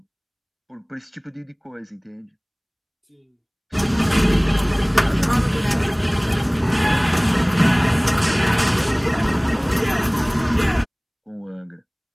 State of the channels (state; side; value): identical; both; correlation 1.00